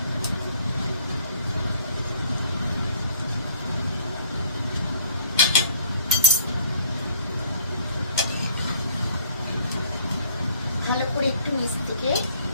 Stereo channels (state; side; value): inverted; both; correlation -0.60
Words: ভালো করে একটু নিচ থেকে